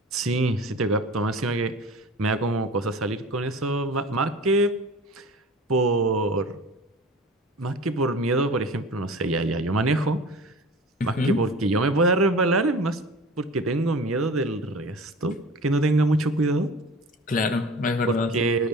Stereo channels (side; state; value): both; normal; correlation 0.38